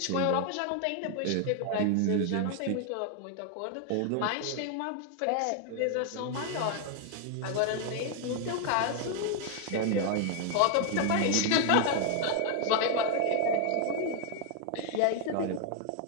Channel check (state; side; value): different; both; correlation 0.00